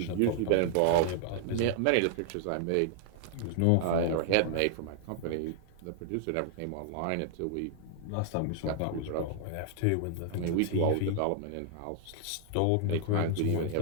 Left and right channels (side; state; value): both; different; correlation -0.01